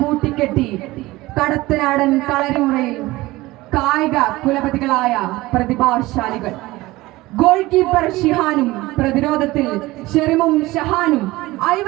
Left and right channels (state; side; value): quieter; left; 19.3 dB